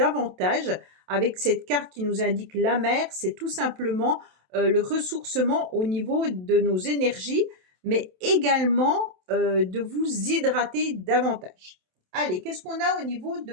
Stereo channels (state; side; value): late; left; 27 ms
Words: avec cette carte qui nous indique la mer. C'est tout simplement le ressourcement au niveau de nos énergies, mais également de vous hydrater davantage. Allez, qu'est-ce qu'on a au niveau de